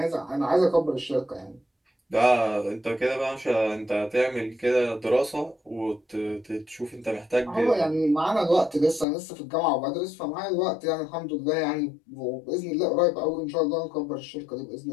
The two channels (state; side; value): drops out; right; at 9.1 s